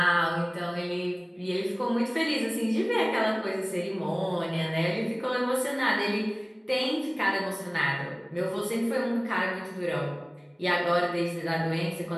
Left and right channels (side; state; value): both; identical; correlation 1.00